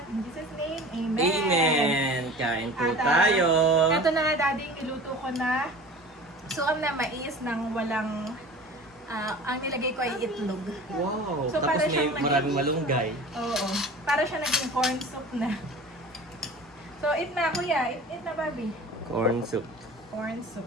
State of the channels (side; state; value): both; normal; correlation 0.40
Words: In Jesus' name, Amen. Amen! Kain po At, tayo! Ito na nga, Daddy, niluto ko na suam na mais ng walang, ang nilagay ko ay itlog. Wow! So, para Tapos may siyang maraming malunggay. Oo. Para siya naging corn soup na. So, eat na, kuya. Eat na, Bobby. Corn soup. Corn soup.